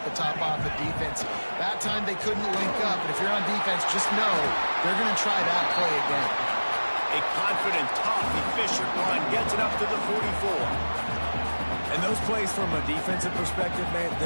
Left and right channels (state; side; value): inverted; both; correlation -1.00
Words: the top off the defense. That time they couldn't link up, and if you're on defense, just know they're going to try that play again. A confident, tough, efficient run gets it up to the 44. And those plays from a defensive perspective, man,